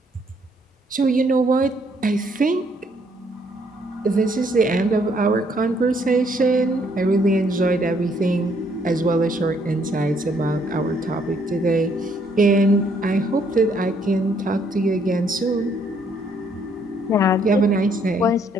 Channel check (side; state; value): both; normal; correlation 0.68